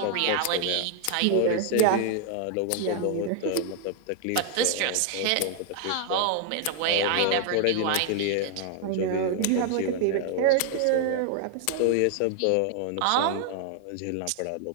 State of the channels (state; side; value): different; both; correlation 0.00